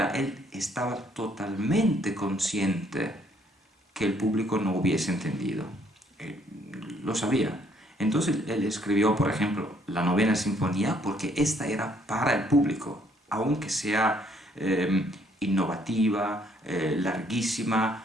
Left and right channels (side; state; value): both; normal; correlation 0.66